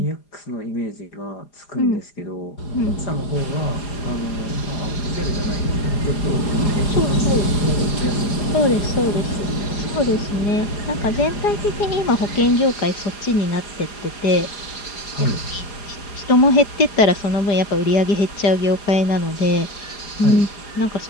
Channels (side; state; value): right; late; 4.9 ms